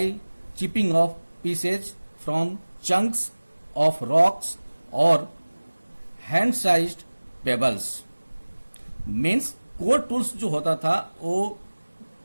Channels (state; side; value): inverted; both; correlation -1.00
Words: chipping off pieces from chunks of rocks और hand sized pebbles. Means core tools जो होता था वो